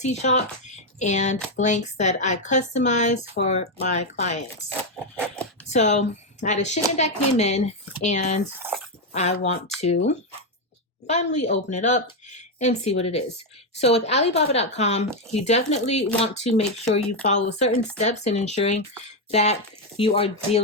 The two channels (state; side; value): normal; both; correlation 0.04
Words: shop and blanks that I customize for my clients. So I had a shipment that came in and I want to finally open it up and see what it is. So with Alibaba.com, you definitely want to make sure you follow certain steps in ensuring that you are